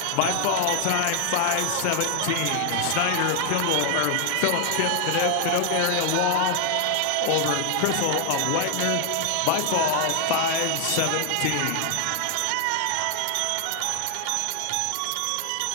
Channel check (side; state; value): both; different; correlation 0.00